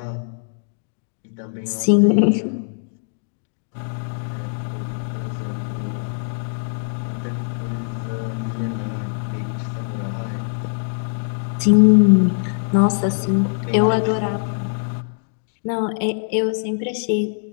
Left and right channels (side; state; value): right; silent; digital silence